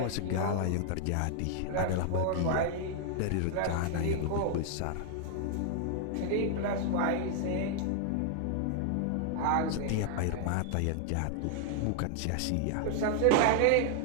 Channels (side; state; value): both; different; correlation 0.00